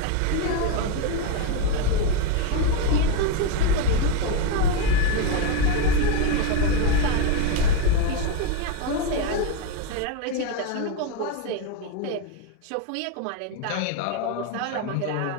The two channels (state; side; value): different; both; correlation 0.02